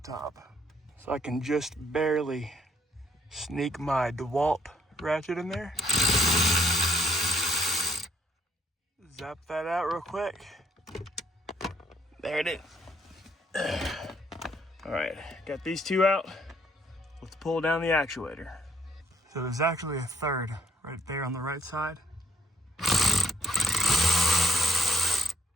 top. So I can just barely sneak my DeWalt ratchet in there. Zap that out real quick. There it is. All right, got these two out. Let's pull down the actuator. So there's actually a third right there on the right side.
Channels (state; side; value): normal; both; correlation 0.70